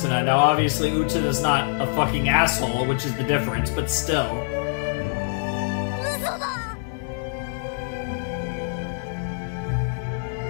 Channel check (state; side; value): silent; right; digital silence